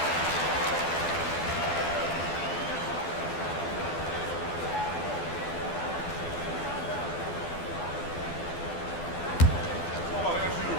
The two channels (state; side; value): late; right; 12 ms